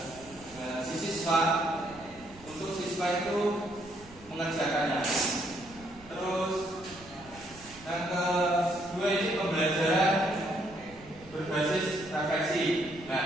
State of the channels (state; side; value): noise; right; rumble, 21 dB below the sound